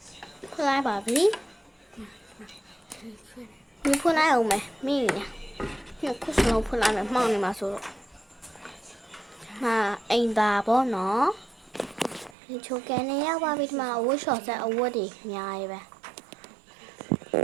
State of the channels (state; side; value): drops out; left; at 12.4 s